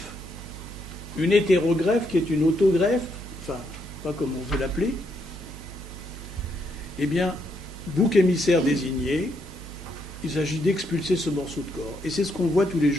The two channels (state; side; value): noise; right; hum, 13 dB below the sound